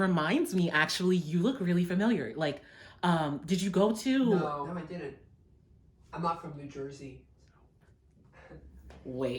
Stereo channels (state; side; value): identical; both; correlation 1.00